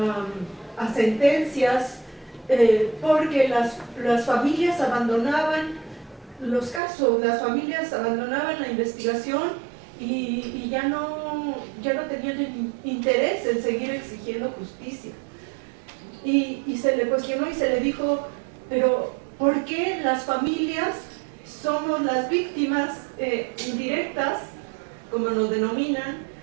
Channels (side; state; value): left; drops out; at 6.8 s